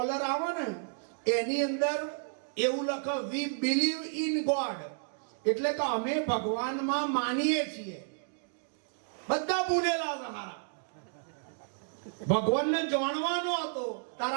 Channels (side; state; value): left; silent; digital silence